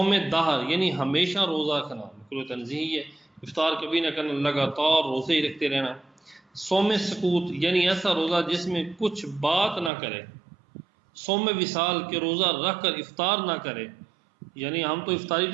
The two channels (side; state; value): left; drops out; at 9.9 s